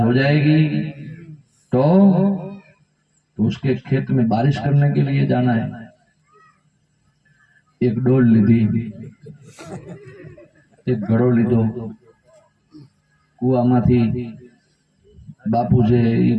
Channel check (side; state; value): both; identical; correlation 1.00